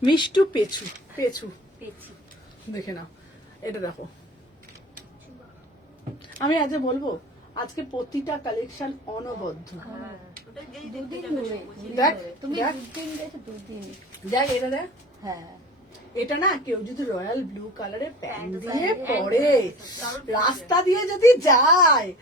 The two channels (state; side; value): normal; both; correlation 0.40